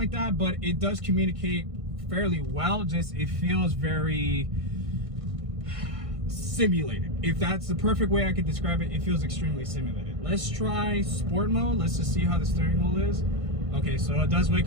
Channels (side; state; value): left; late; 1.6 ms